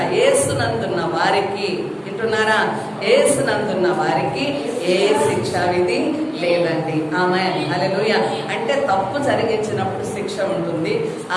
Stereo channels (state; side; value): identical; both; correlation 1.00